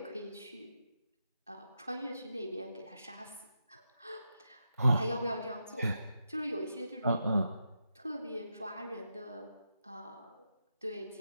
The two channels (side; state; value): both; inverted; correlation -0.86